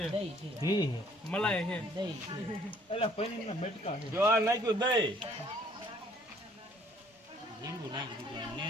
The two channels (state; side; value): normal; both; correlation 0.60